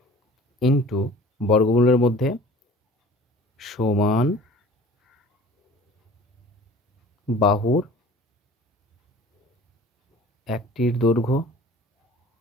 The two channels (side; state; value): both; normal; correlation 0.45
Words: ইন্টু বর্গমূলের মধ্যে সমান বাহুর একটির দৈর্ঘ্য